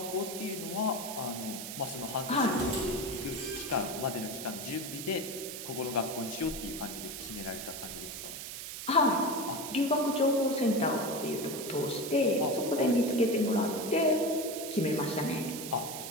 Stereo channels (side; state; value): right; noise; hiss, 8 dB below the sound